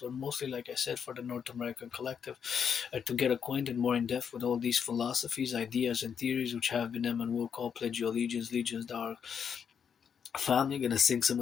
mostly, like I said, for the North American collective, to get acquainted more in depth with all these philosophies, ideas, and theories which have been them and will call pledge your allegiance, legions, thou family. Gonna sing some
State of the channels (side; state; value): right; quieter; 7.3 dB